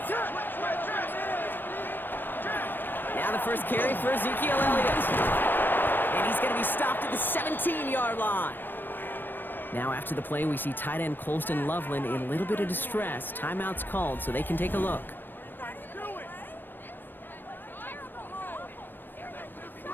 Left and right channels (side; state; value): right; late; 0.094 ms